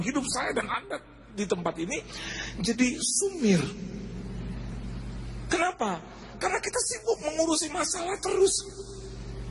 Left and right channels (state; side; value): identical; both; correlation 1.00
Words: saya dan Anda di tempat ini jadi sumir. Kenapa? Karena kita sibuk mengurusi masalah terus.